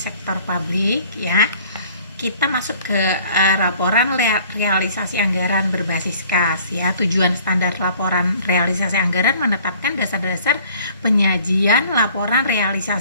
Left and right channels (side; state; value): both; inverted; correlation -0.54